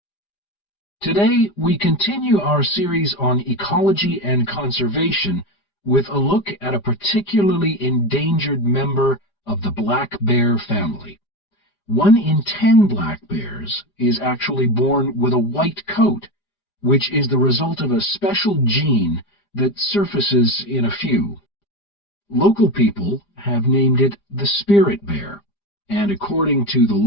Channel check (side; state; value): right; late; 5.0 ms